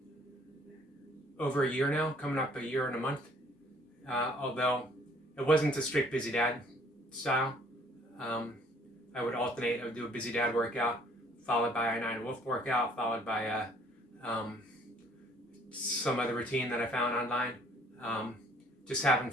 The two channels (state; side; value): normal; both; correlation 0.60